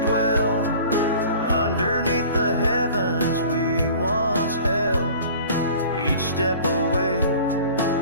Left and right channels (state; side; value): inverted; both; correlation -0.45